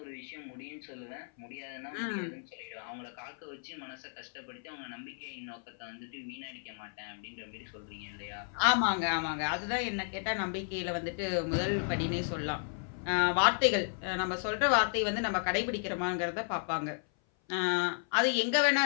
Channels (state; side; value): silent; right; 55 dB below the other